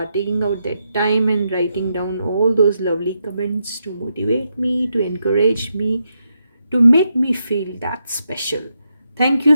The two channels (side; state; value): both; inverted; correlation -0.82